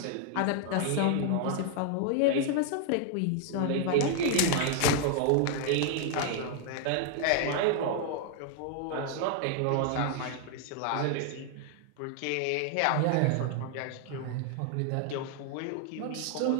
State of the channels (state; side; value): different; both; correlation 0.00